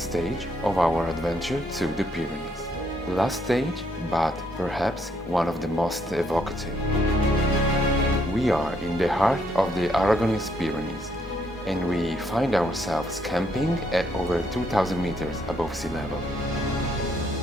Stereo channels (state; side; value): normal; both; correlation 0.72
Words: of our adventure to the Pyrenees. Last stage, but perhaps one of the most evocative. We are in the heart of the Aragonese Pyrenees, and we find ourselves camping at over 2,000 meters above sea level.